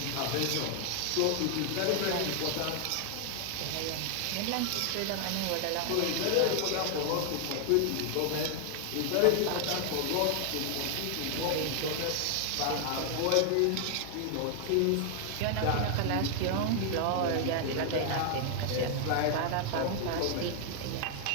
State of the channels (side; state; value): both; different; correlation 0.00